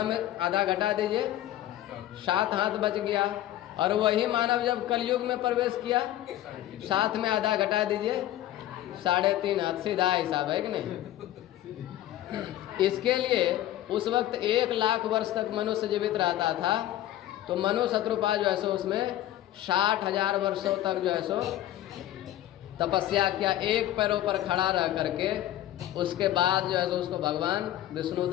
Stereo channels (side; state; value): right; quieter; 13.5 dB